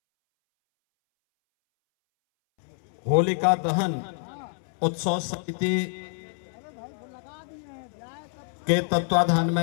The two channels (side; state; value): right; silent; 60 dB below the other